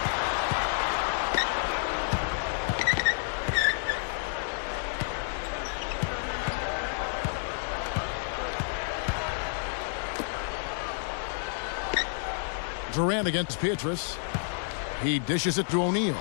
Durant against Pietrus. He dishes it to O'Neal.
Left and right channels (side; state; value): right; silent; digital silence